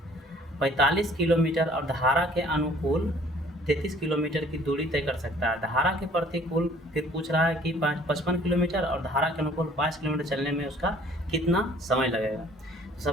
45 किलोमीटर और धारा के अनुकूल 33 किलोमीटर की दूरी तय कर सकता है। धारा के प्रतिकूल फिर पूछ रहा है कि 55 किलोमीटर और धारा के अनुकूल 5 किलोमीटर चलने में उसका कितना समय लगेगा। तो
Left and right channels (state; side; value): normal; both; correlation 0.55